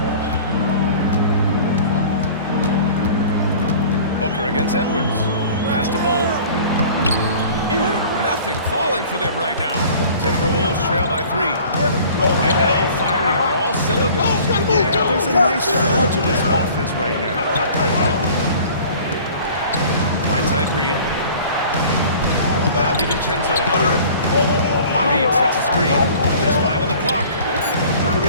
Booker against Edwards. Pass to Bowl. Ooh, nothing falling for them right now. Timberwolves trail by 3. Right now, firing on all cylinders. Yeah, there's a nice flow to this offense right now. Right side Reed. Now DiVincenzo. Reed sets a screen. There's 5 on the clock.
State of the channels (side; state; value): both; inverted; correlation -0.46